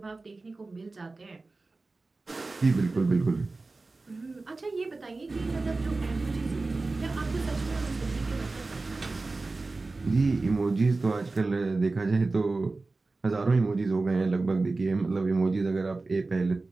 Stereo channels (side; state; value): left; quieter; 3.5 dB